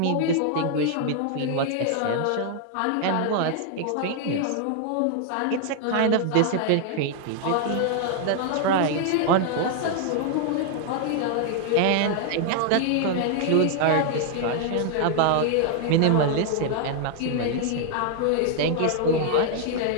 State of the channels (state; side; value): different; both; correlation 0.00